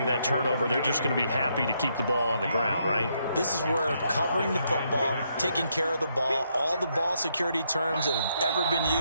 that turnover, they're just going to be happy to keep the ball on the ground, right? This is where covering the football, taking care of the ball, all the ball security terms that have ever been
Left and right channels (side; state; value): both; inverted; correlation -0.76